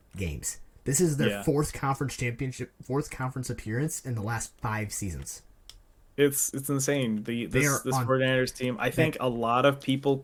games. This is their fourth conference appearance in the last 5 seasons. It's insane. This 49ers team, I think a lot of people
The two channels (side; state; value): both; identical; correlation 1.00